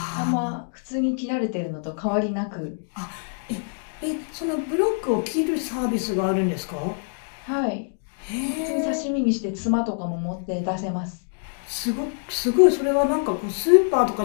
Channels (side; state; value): right; silent; 62 dB below the other